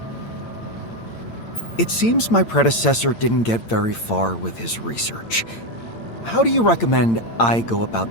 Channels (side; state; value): right; late; 8.8 ms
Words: It seems my predecessor didn't get very far with his research. How do you recommend I go